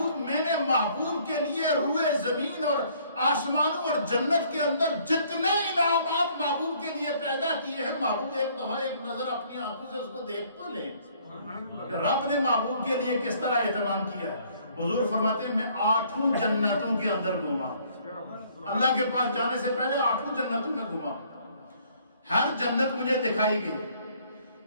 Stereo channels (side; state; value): both; inverted; correlation -0.62